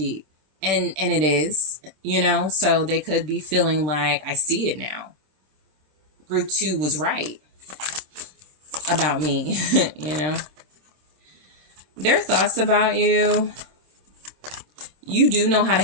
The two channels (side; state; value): left; late; 26 ms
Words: And it is, so they could be feeling like, I see it now. Group 2 was right about me, Their thoughts about you, you do know how to